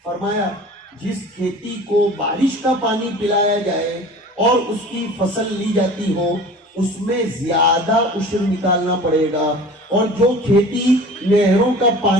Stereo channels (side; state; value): both; normal; correlation 0.41